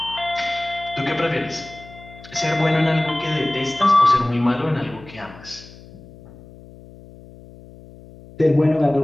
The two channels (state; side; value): noise; left; hum, 20 dB below the sound